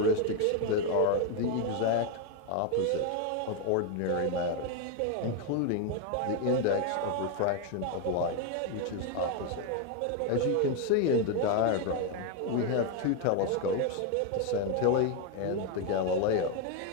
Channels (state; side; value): different; both; correlation 0.01